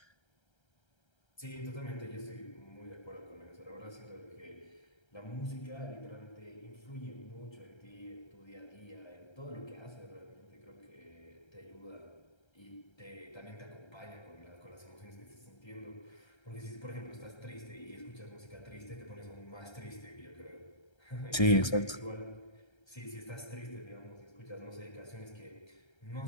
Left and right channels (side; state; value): right; late; 1.3 ms